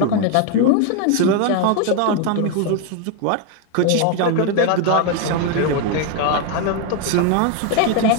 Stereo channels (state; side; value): different; both; correlation 0.01